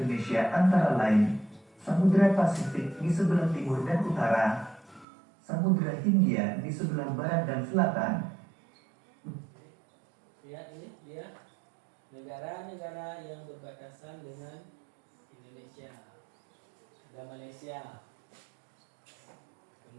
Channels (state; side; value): drops out; left; at 5.1 s